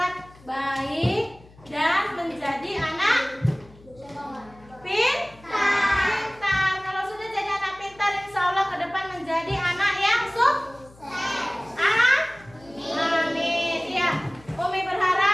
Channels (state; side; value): noise; left; hum, 24 dB below the sound